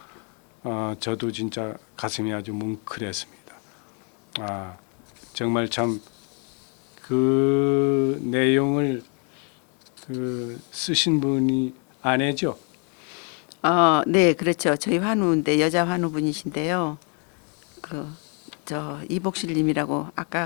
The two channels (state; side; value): quieter; right; 38.2 dB